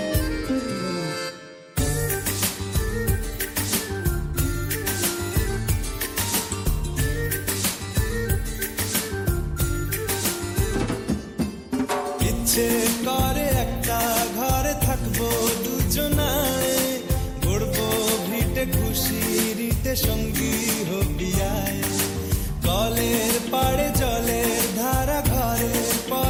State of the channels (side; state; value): both; identical; correlation 1.00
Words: ইচ্ছে করে একটা ঘরে থাকবো দুজনায়, গড়বো ভিটে খুশিরিতে সঙ্গী হবিয়ায়। কলের পাড়ে জলের ধারা ঘরের